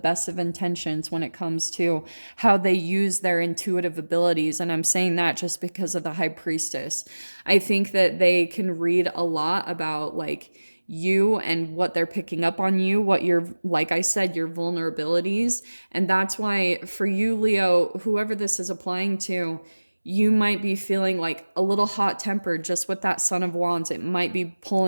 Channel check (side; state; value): both; inverted; correlation -1.00